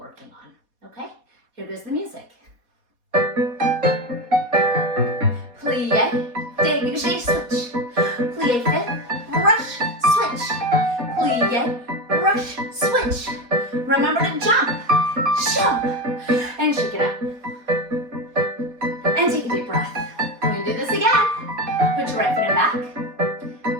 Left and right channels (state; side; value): late; left; 4.2 ms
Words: on, okay? Here goes the music. Plie, dégagé, switch. Plie 5th, brush, switch. Plie, brush, switch. Remember to jump, jump, and shake it out. And take a deep breath. We're gonna do this again. Put your right foot in back.